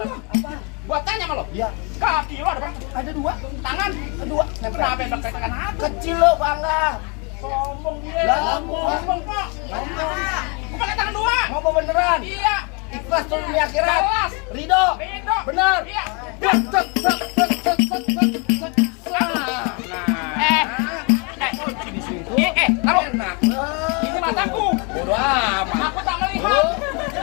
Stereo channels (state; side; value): quieter; right; 33.0 dB